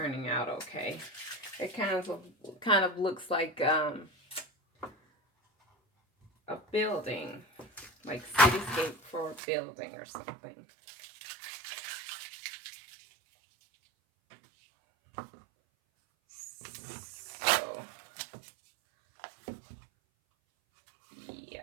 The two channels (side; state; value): left; drops out; at 9.4 s